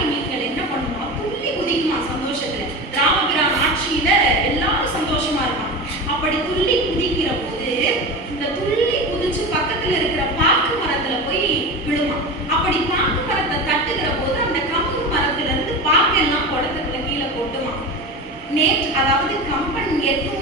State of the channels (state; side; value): normal; both; correlation 0.26